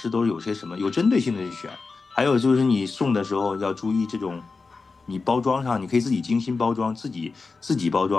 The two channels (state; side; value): quieter; right; 4.2 dB